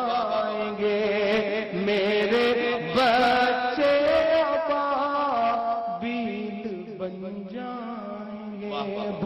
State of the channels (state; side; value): identical; both; correlation 1.00